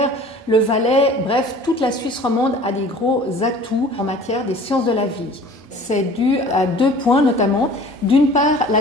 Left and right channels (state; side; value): normal; both; correlation 0.46